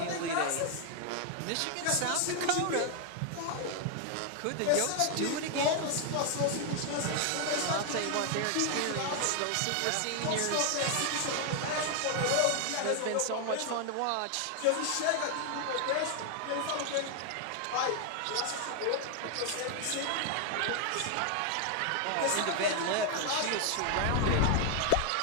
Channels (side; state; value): both; different; correlation 0.00